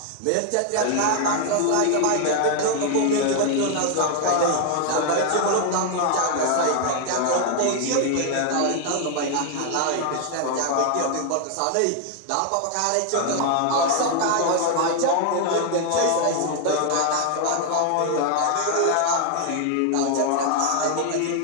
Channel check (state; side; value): different; both; correlation 0.00